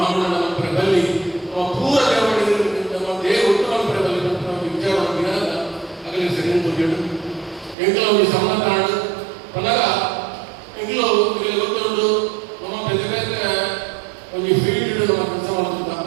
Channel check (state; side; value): drops out; left; at 7.8 s